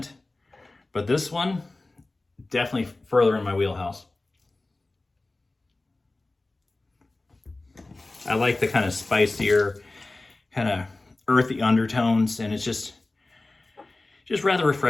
But this one, definitely further in my wheelhouse. I like the kind of spicier, kind of earthy undertones, and it's just rather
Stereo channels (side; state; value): right; quieter; 3.0 dB